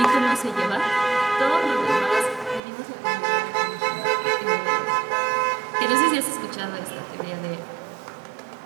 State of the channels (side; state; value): left; drops out; at 2.6 s